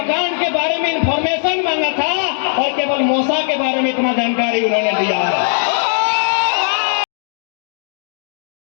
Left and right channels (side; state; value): right; silent; digital silence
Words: के बारे में इंफॉर्मेशन मांगा था, और केवल मौसा के बारे में इतना जानकारी उन्होंने दिया है।